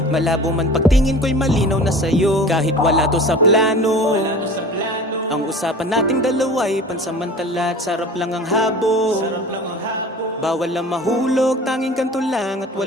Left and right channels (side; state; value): both; normal; correlation 0.40